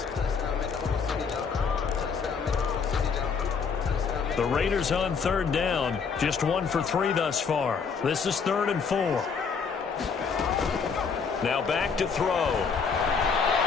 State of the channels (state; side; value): quieter; right; 5.7 dB